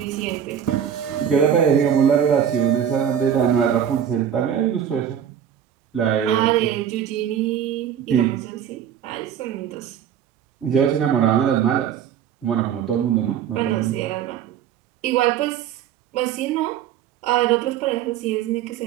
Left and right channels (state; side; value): quieter; left; 9.0 dB